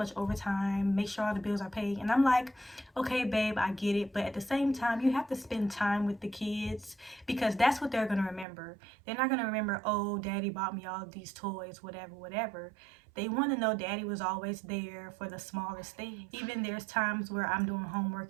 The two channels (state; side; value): drops out; left; at 8.5 s